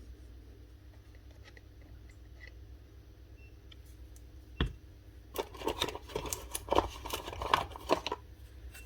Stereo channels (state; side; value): identical; both; correlation 1.00